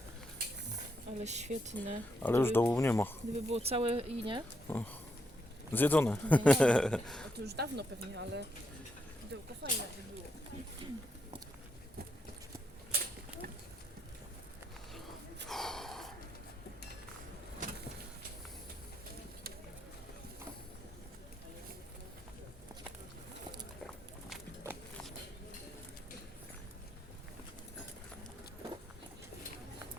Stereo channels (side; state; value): both; normal; correlation 0.79